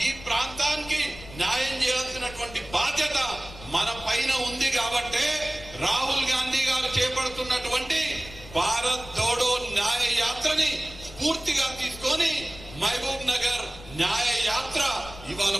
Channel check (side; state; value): left; noise; rumble, 16 dB below the sound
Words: ఈ ప్రాంతానికి న్యాయం చేయాల్సినటువంటి బాధ్యత మన పైన ఉంది. కాబట్టి రాహుల్ గాంధీ గారు చేపడుతున్నటువంటి భారత్ జోడో న్యాయ యాత్రని స్ఫూర్తిగా తీసుకొని మహబూబ్ నగర్ న్యాయ యాత్ర ఇవాళ